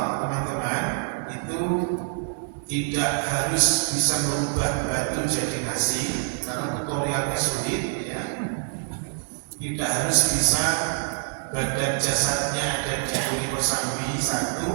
teman-teman, itu tidak harus bisa merubah batu jadi nasi, karena tutorialnya sulit, ya. Tidak harus bisa badan jasadnya ada di Jaburi Kosambi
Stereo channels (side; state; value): left; silent; 56 dB below the other